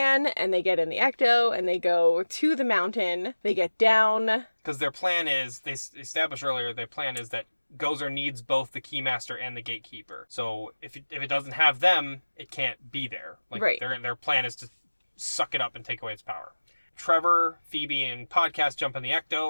and they get in the Ecto, and they go to the mountain. They get down. Because their plan is, they established earlier, their plan is that Gozer needs both the Keymaster and the Gatekeeper. So if it doesn't have them, it can't be there. Like, right. Their plan is to suck it up and take away its power. Trevor, Phoebe, and Podcast jump in the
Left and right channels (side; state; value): both; inverted; correlation -1.00